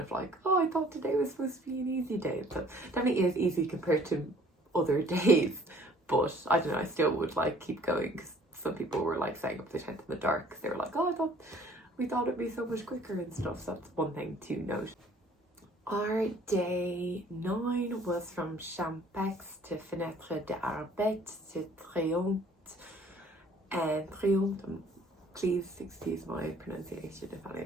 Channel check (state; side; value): normal; both; correlation 0.56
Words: of like, oh, I thought today was supposed to be an easy day. So definitely is easy compared to other days, but I don't know, I still would like keep going, because some people were like staying up to the tent in the dark because they were like, oh, we thought it'd be so much quicker and stuff. So that's one thing to note. Our day 9 was from Champex to Fenêtre d'Arbet to Triomphe, and Triomphe, please excuse my pronunciation if any of